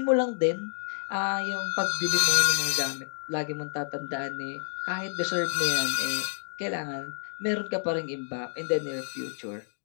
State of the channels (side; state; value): right; silent; digital silence